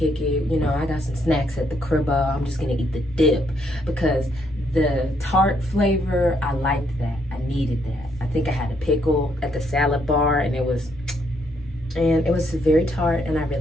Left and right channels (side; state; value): both; normal; correlation 0.73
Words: it. You know, I got some snacks at the crib. I'm just gonna eat the dip because the tart flavor, I liked that. I needed that. I think I had a pickle at the salad bar, and it was very tart, and I